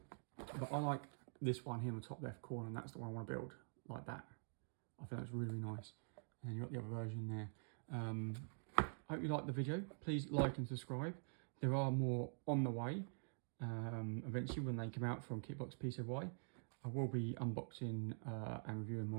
But I like this one here in the top left corner, and that's the one I want to build, like that. I think that's really, really nice. And you've got the other version there. I hope you liked the video. Please like and subscribe. There are more on the way. Eventually, when they come out from Kitbox PCY, I will be unboxing and reviewing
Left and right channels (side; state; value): left; silent; digital silence